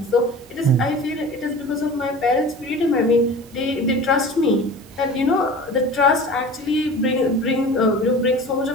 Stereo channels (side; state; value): both; normal; correlation 0.37